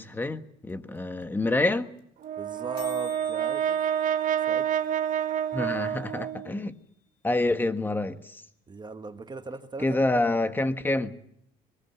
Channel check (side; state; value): both; normal; correlation 0.61